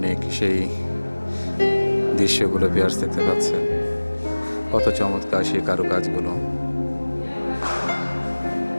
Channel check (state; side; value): inverted; both; correlation -1.00